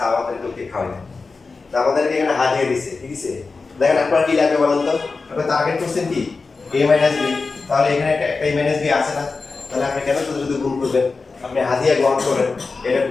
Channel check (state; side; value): quieter; right; 4.2 dB